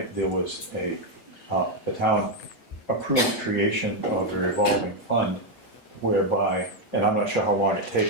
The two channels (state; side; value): late; right; 8.3 ms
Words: there was the town approved creation of a revolving fund whereby, and I'm not sure how long it